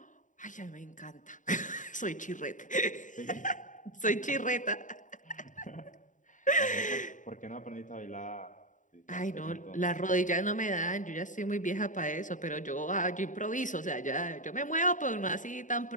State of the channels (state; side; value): late; right; 0.37 ms